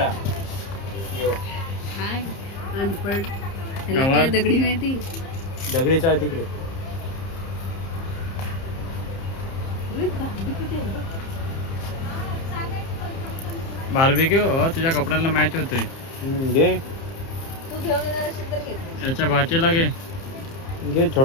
यो हाय अनपढ ह्याला काय दगडी माहिती दगडी चाळ तिकडे बार्बिक्यू तुझ्या कपड्याला मॅच होते घे तू घेऊन येणार असेल तर घे याच्या भाचीला घे घे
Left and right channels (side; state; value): right; late; 30 ms